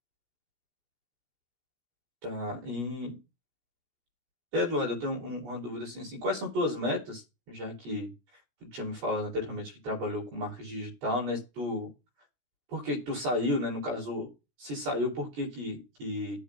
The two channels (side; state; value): left; late; 17 ms